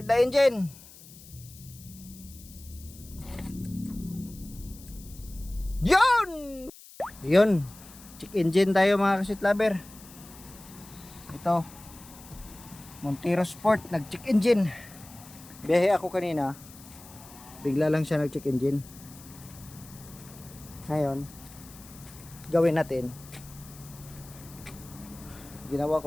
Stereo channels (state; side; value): noise; left; hiss, 19 dB below the sound